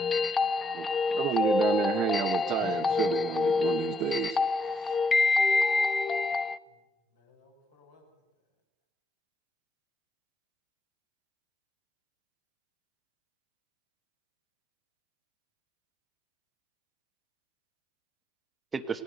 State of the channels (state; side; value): normal; both; correlation 0.78